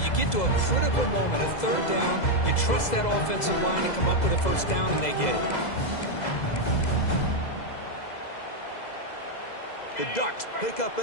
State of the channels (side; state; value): right; late; 2.0 ms